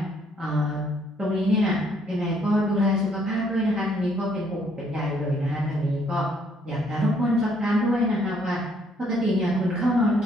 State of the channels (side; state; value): both; normal; correlation 0.67